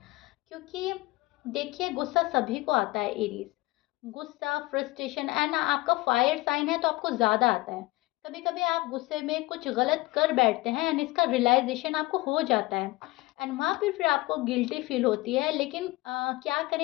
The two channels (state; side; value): quieter; right; 20.4 dB